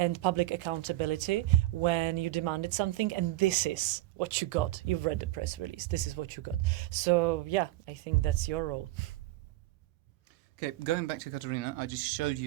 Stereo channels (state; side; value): quieter; left; 16.8 dB